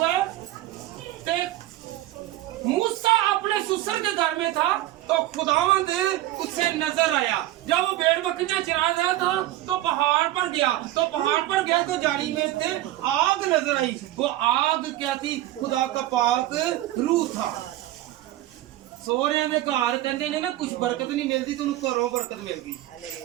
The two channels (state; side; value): quieter; left; 15.2 dB